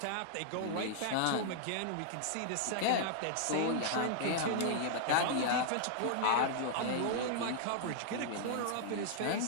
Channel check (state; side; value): different; both; correlation -0.01